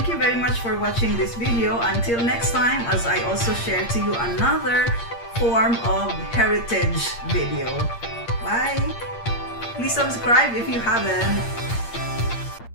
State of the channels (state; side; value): late; right; 8.6 ms